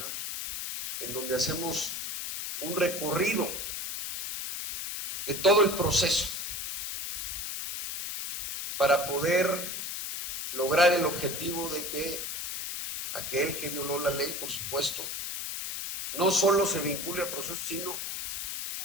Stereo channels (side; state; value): left; noise; hiss, 4 dB below the sound